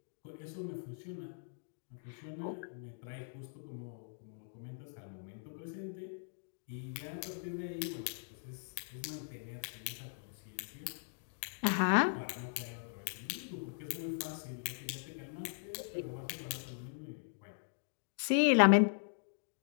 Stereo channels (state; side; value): silent; right; digital silence